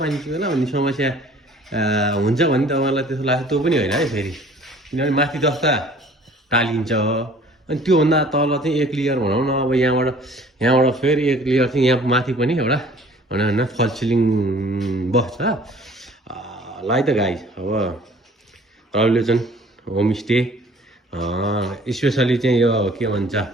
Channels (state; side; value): normal; both; correlation 0.52